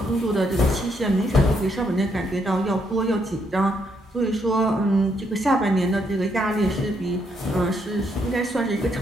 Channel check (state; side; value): normal; both; correlation 0.75